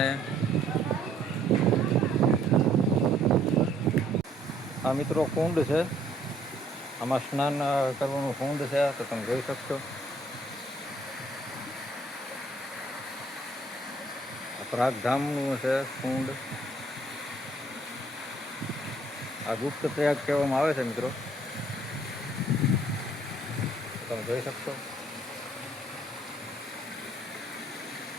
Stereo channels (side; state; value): both; normal; correlation 0.63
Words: આ મિત્રો કુંડ છે, આમાં સ્નાન કરવાનું કુંડ છે, તો તમે જોઈ શકશો. પ્રયાગ ધામનું છે કુંડ. આ ગુપ્ત પ્રયાગ કહેવામાં આવે છે મિત્રો, તમે જોઈ શકશો.